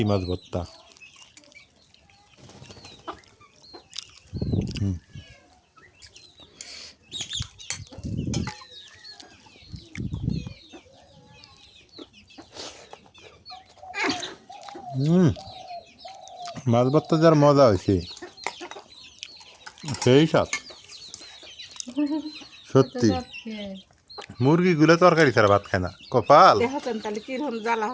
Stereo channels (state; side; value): identical; both; correlation 1.00